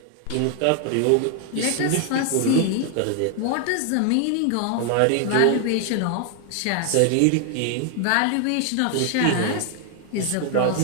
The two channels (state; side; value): different; both; correlation 0.00